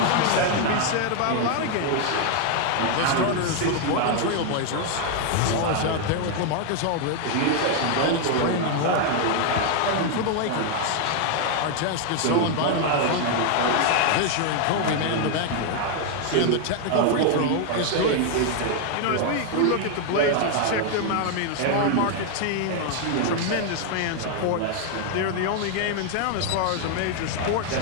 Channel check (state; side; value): different; both; correlation 0.00